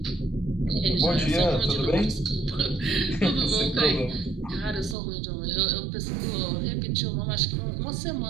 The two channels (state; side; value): drops out; left; at 5.0 s